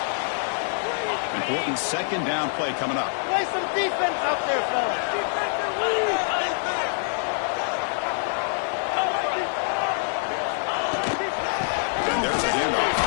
Important 2nd down play coming up. Play some defense out there, fellas. And there's a handoff.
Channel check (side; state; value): right; silent; digital silence